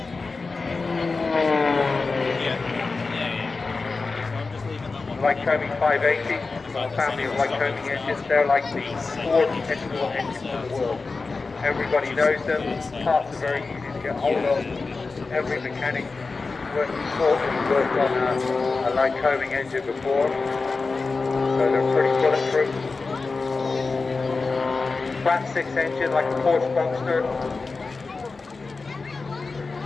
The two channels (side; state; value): right; quieter; 4.1 dB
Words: Lycoming 580, a family of Lycoming engines. They're like the fourth export engines in the world. Everybody knows them. Parts are very easy to get hold of. Every mechanic worked on a Lycoming engine before, so they're pretty bulletproof. Flat 6 engine like a Porsche Boxster.